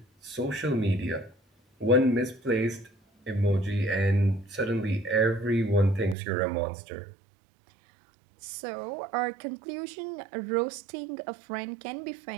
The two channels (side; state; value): left; drops out; at 6.2 s